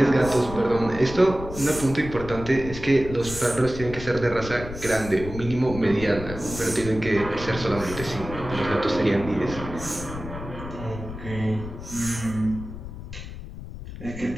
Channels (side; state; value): left; noise; rumble, 10 dB below the sound